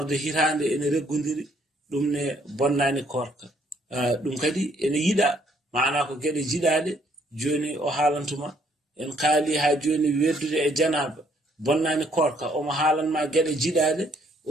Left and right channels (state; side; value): normal; both; correlation 0.66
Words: hitande ene reggodiri ɗum ne bonnani korka ɗum kadi ene yiɗa mana ko gueɗe jiɗaɗe joni o haalantuma en kaali ha joni weddude e janaba bonnani korka omo haalanma gueɗe jiɗaɗe o